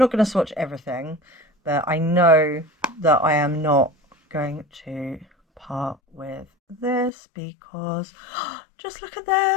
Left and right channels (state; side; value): drops out; right; at 7.1 s